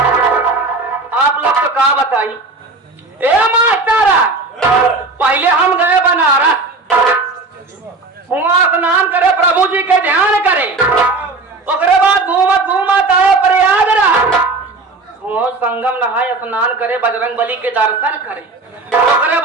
आप लोग तो का बताई। ए मास्टर, पहले हम गए बनारस, वहाँ स्नान करे, प्रभु जी के ध्यान करे, उसके बाद घूमत घूमत आए प्रयागराज, वो संगम नहाए, स्नान करे, बजरंग बली के दर्शन करे, उसके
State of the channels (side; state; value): left; quieter; 3.5 dB